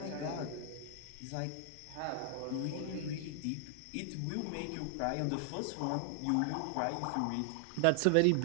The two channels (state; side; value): different; both; correlation 0.00